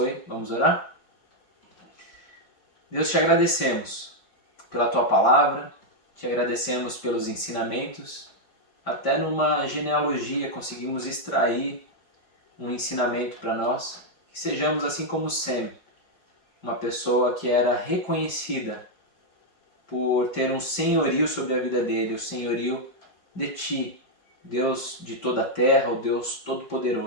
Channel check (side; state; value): right; late; 5.1 ms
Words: Vamos orar? Deus, te agradecemos pela tua palavra, te agradecemos pelos ensinamentos. Até numa genealogia conseguimos extrair um ensinamento para nós. Que sejamos assim como Sem, uma pessoa que era reconhecida por ter um senhorio sobre a vida dele, o senhorio de ti, Deus de toda a terra, o Deus